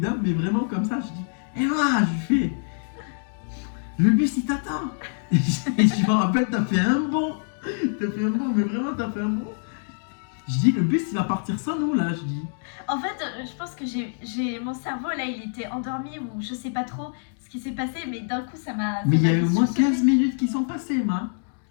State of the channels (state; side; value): silent; right; digital silence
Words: mais vraiment comme ça. Je dis, Emma, je fais, le bus il t'attend. Et je me rappelle, t'as fait un bond. Mais vraiment, t'as fait un bond. Je dis, le bus il va partir sans nous là, je dis. En fait, je pense que j'ai mon cerveau là, il était endormi ou je sais pas trop ce qui s'est passé, mais d'un coup ça m'a. Mais il y a fait eu au moins sursauter. 15 minutes qui sont passées, Emma.